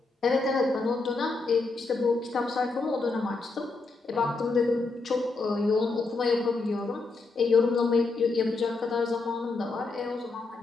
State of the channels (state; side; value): quieter; right; 3.7 dB